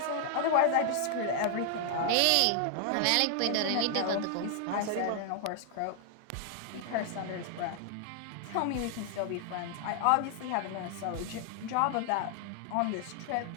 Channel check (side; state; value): both; different; correlation 0.00